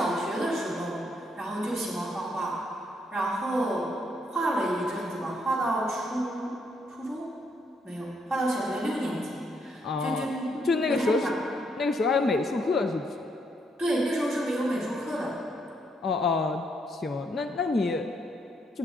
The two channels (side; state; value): both; normal; correlation 0.74